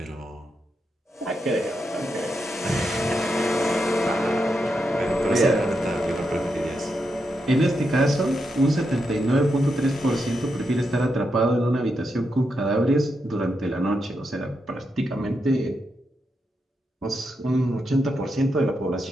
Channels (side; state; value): both; normal; correlation 0.84